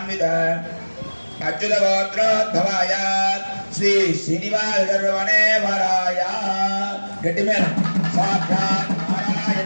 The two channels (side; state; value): both; inverted; correlation -1.00